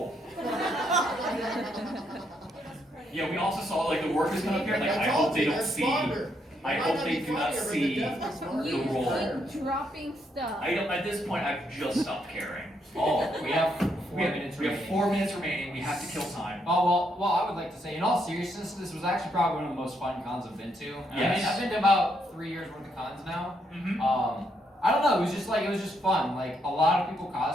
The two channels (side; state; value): both; normal; correlation 0.76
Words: Yeah, we also saw like the workers come up here. Like, I hope they don't see. I hope they do not see the roll. Keep dropping stuff. I don't. At this point, I've just stopped caring. Oh, we have 4 minutes We have remaining. 4 minutes remaining. We have to kill time. Oh, well, I would like to say, in all seriousness, this was actually probably one of the most fun cons I've been to. I mean, I've been to about 3 years worth of cons now. I don't know, it was just fun. Like, a lot of people